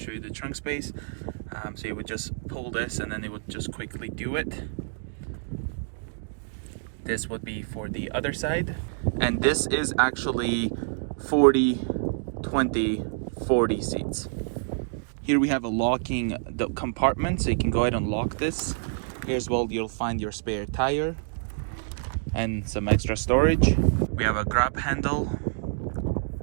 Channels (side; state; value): left; silent; digital silence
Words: you the trunk space. So you would just pull this and then it would just quickly do it. This would be for the other side. And this is actually 40, 20, 40 seats. Here we have a locking the compartment, so you can go ahead and lock this. Here as well, you'll find your spare tire and some extra storage. We have a grab handle